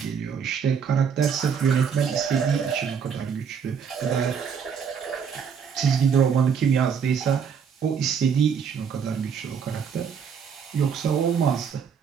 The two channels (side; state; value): left; quieter; 7.0 dB